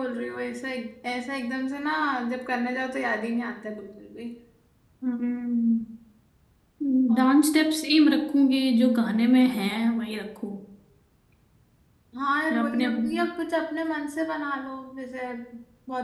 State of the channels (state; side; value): identical; both; correlation 1.00